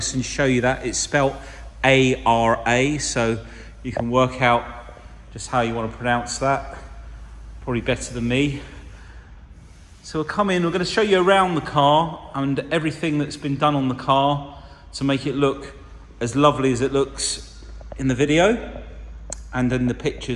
and show you that. It's spelt A-R-A, so you can work out just how you want to pronounce that. Probably better than me. So we'll come in, we're going to show you around the car and everything that's been done on the car to make it look as lovely as it looks in the video and in the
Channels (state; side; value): identical; both; correlation 1.00